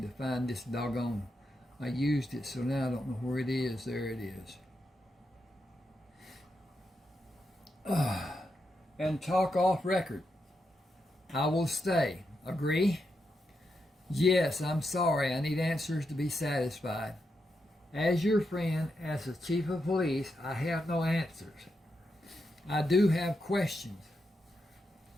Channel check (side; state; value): both; normal; correlation 0.84